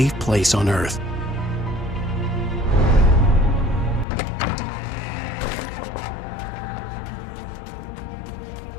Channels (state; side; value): drops out; right; at 4.0 s